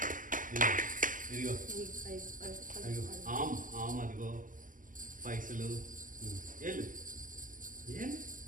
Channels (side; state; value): left; late; 0.38 ms